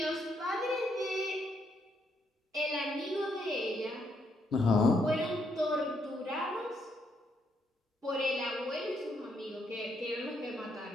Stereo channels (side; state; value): both; normal; correlation 0.75